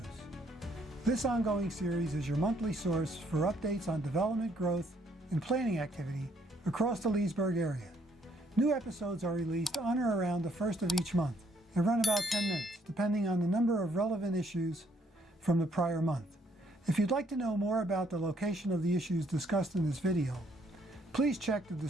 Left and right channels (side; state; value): both; normal; correlation 0.68